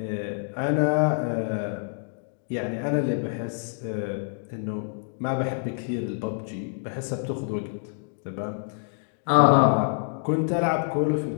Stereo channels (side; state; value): right; silent; digital silence